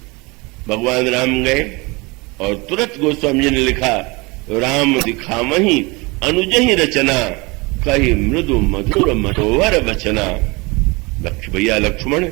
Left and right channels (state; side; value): quieter; left; 25.9 dB